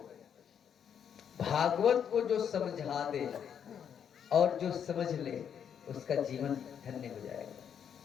भागवत को जो समझा दे और जो समझ ले, उसका जीवन धन्य हो जाएगा।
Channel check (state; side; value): quieter; right; 8.2 dB